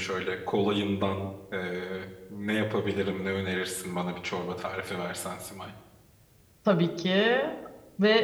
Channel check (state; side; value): identical; both; correlation 1.00